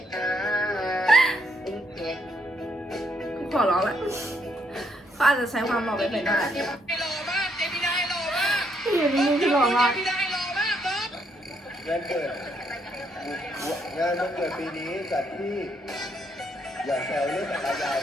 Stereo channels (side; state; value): both; normal; correlation 0.73